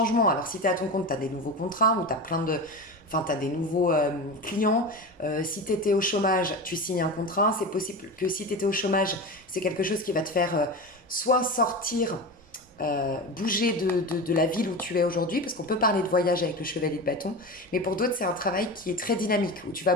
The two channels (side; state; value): both; normal; correlation 0.26